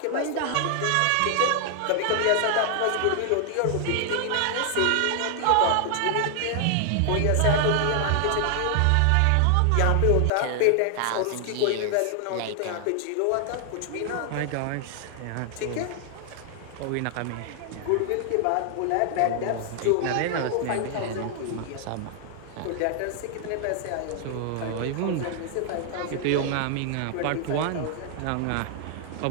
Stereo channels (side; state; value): both; different; correlation 0.00